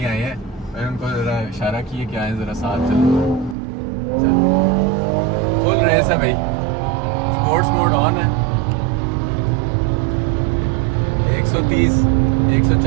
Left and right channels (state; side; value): drops out; left; at 3.6 s